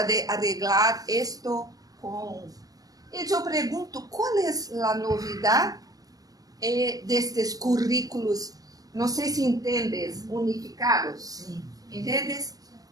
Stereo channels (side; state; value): left; late; 0.18 ms